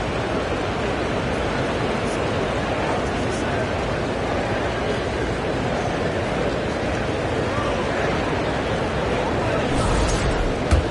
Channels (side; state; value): both; identical; correlation 1.00